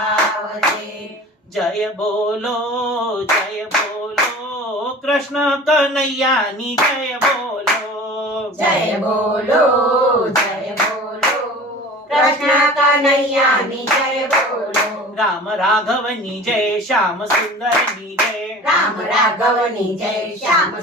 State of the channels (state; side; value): normal; both; correlation 0.40